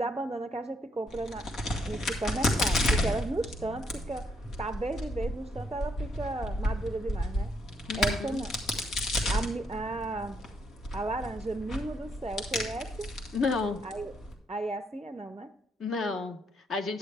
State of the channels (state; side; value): normal; both; correlation 0.73